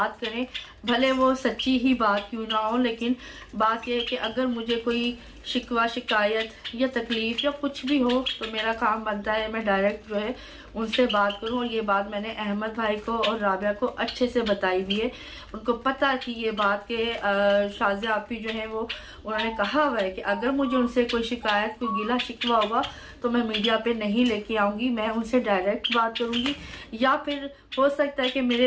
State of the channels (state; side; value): identical; both; correlation 1.00